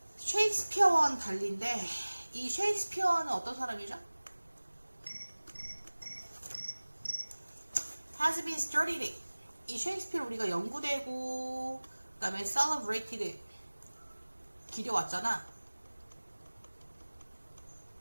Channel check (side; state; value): both; inverted; correlation -1.00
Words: 달리인데 이 셰익스피어는 어떤 사람이죠? has been studied. 이 셰익스피어를 우리가 연구되고 그다음에 celebrated 기려왔잖아.